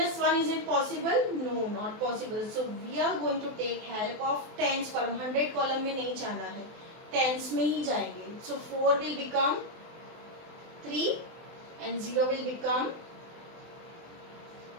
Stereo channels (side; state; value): left; late; 24 ms